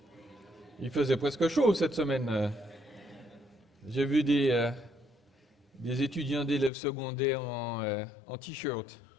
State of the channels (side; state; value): right; drops out; at 6.7 s